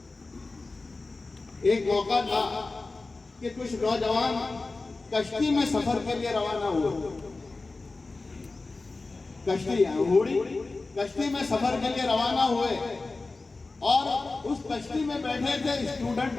ایک موقع تھا کہ کچھ نوجوان کشتی میں سفر کے لیے روانہ ہوئے، کشتی میں سفر کے لیے روانہ ہوئے، اور اس کشتی میں بیٹھے تھے اسٹوڈنٹ،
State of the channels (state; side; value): quieter; right; 3.5 dB